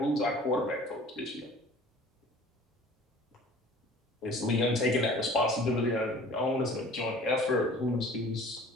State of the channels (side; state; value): both; normal; correlation 0.48